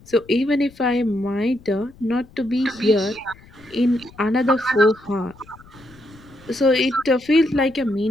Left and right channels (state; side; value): noise; left; rumble, 24 dB below the sound